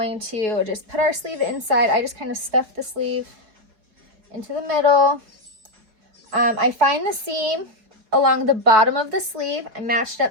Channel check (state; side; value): late; left; 4.5 ms